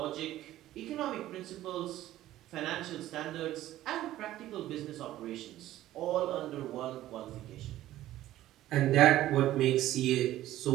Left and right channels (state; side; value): quieter; left; 14.3 dB